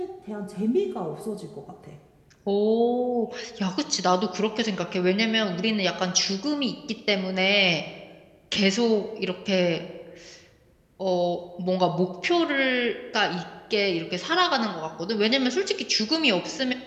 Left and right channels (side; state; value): both; identical; correlation 1.00